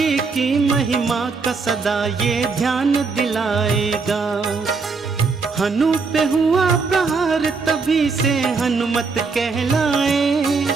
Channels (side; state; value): left; quieter; 4.6 dB